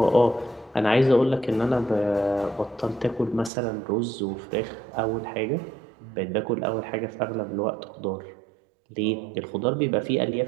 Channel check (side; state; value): left; drops out; at 3.5 s